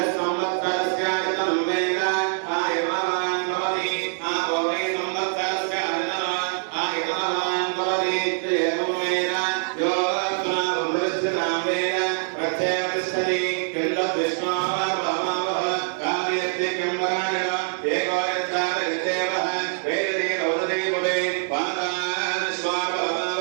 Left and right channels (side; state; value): left; silent; 58 dB below the other